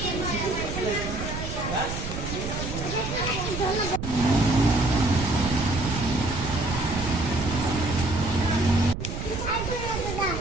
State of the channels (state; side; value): noise; right; rumble, 6 dB below the sound